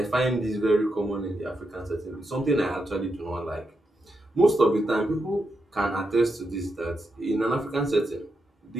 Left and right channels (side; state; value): both; normal; correlation 0.84